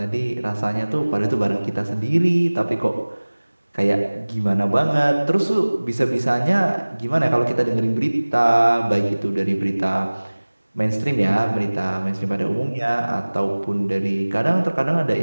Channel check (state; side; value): inverted; both; correlation -1.00